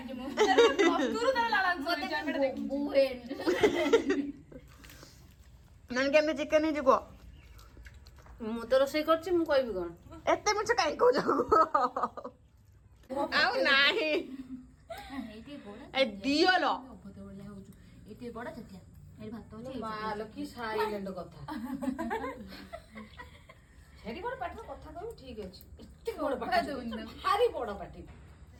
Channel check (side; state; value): both; identical; correlation 1.00